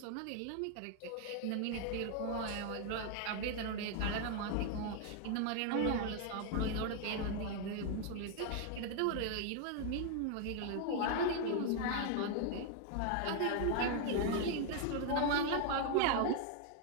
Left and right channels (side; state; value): both; different; correlation 0.00